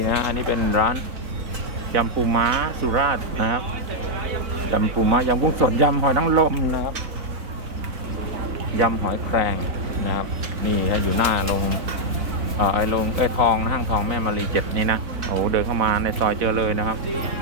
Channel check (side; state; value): left; late; 4.0 ms